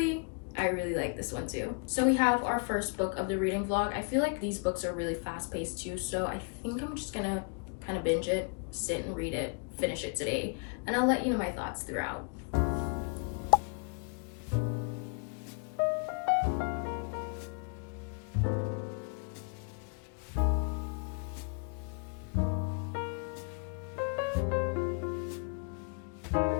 I really like this one too. So we have our first book of the reading vlog. I feel like these books are really fast-paced too, so I think I'm just gonna kind of binge it, sit and read it, finish it today, and I'll let you know my thoughts throughout.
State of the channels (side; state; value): right; quieter; 38.4 dB